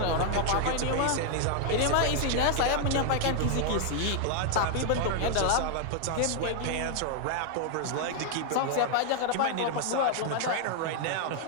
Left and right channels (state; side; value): different; both; correlation 0.00